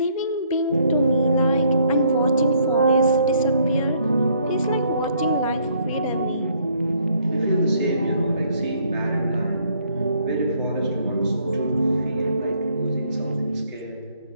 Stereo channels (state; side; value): inverted; both; correlation -0.66